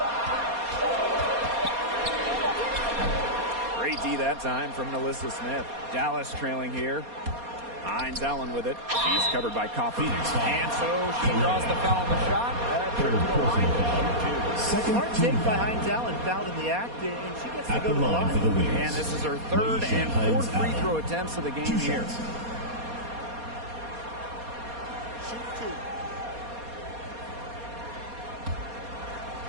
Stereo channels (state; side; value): late; left; 4.2 ms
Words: Great D that time from Melissa Smith. Dallas trailing here. Hines Allen with it. She's covered by Coffey. And so she draws the foul on the shot. Trip to the line. Smart take by Hines Allen, fouled in the act, and she gets to go to the line. For the wins. And this is her 3rd and 4th free throw attempts of the game here. Shoot